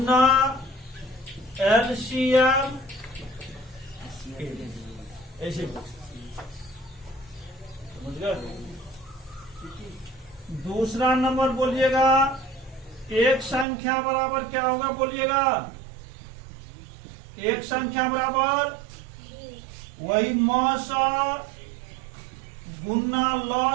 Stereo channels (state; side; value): drops out; left; at 13.7 s